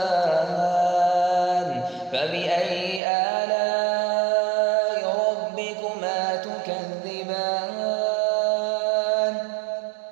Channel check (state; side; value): drops out; left; at 3.0 s